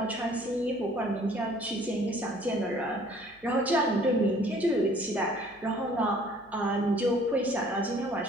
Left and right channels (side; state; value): left; noise; hum, 29 dB below the sound